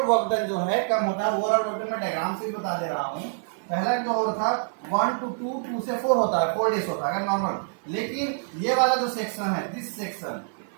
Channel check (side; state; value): left; silent; 56 dB below the other